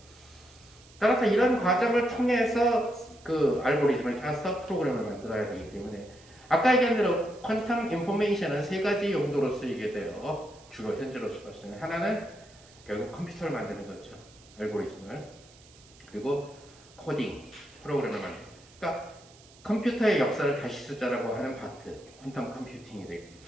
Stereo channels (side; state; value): right; noise; hiss, 25 dB below the sound